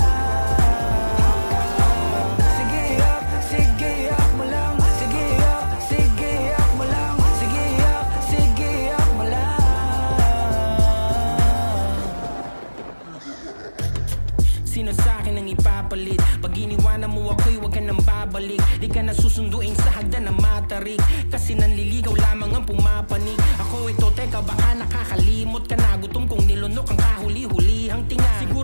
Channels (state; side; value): inverted; both; correlation -1.00